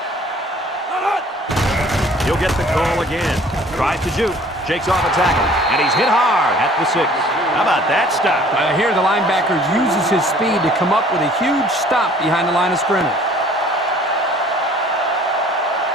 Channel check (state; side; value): normal; both; correlation 0.53